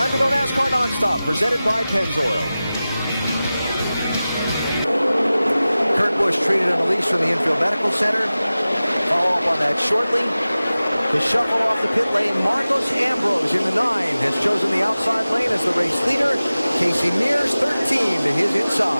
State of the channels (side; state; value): both; inverted; correlation -0.96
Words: to go NASCAR Nonstop, presented by Pennzoil. Kurt Busch Busch treated and released from the infield medical center. Follow up on that shortly. The shuffle off the pit lane. Marcos Ambrose in the 9 has chosen the outside lane as the race leader. Kasey Mears 13 to his